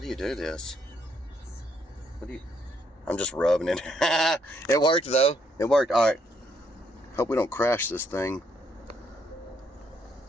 you do this? What do you... I'm just rubbing it. It worked though. It worked. All right. Hope we don't crash this thing.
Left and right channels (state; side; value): normal; both; correlation 0.72